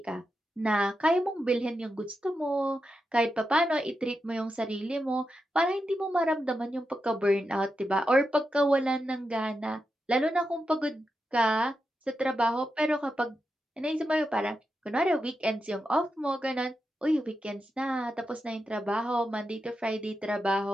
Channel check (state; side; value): normal; both; correlation 0.88